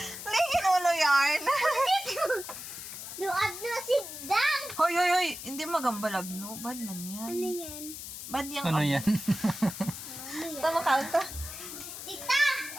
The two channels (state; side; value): noise; left; hiss, 10 dB below the sound